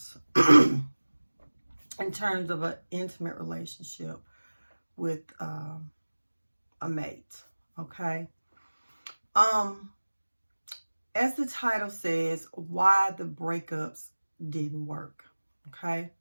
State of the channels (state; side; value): inverted; both; correlation -1.00